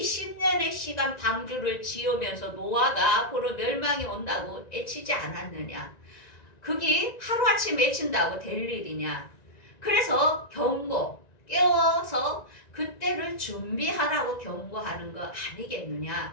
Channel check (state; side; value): late; right; 1.9 ms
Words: 시간 방주를 지으면서 노아가 앞으로 멸망이 온다고 애치지 않았느냐? 그게 하루아침 외친다고 될 일이냐. 그래서 깨워서 그때를 준비하라고 경고하는 거